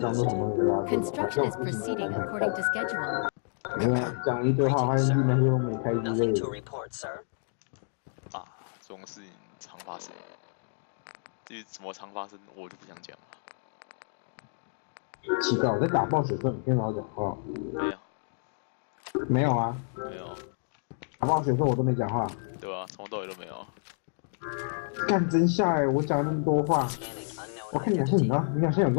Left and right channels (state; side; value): silent; right; digital silence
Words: 当做什么没拉过。Construction is proceeding according to schedule. 没有讲一堆话，发现那些都没开之类的。啊，这种事情常发生。至于怎么常发生，我就不想讲了。奇怪，我在打爆水时候，你跟老讲话。没有。没有啊。没有。打爆水的时候我都没讲话。对吧？从头到尾都没有。干真下哎！我讲了那么多话，我看你好像你啊，你好像有